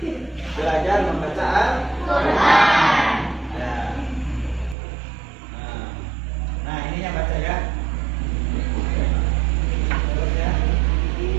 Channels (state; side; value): drops out; left; at 4.8 s